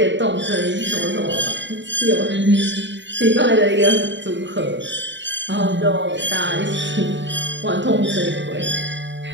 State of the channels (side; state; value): left; late; 0.53 ms